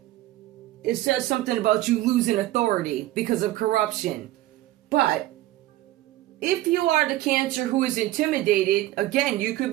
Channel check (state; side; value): quieter; left; 15.9 dB